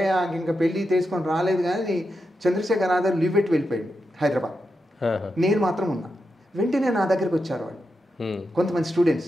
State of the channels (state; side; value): normal; both; correlation 0.87